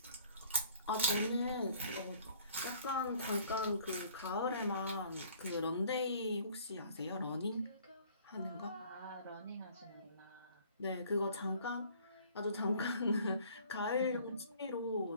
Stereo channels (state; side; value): inverted; both; correlation -0.55